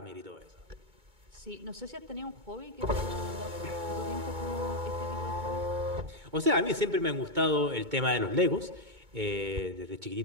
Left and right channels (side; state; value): left; late; 2.2 ms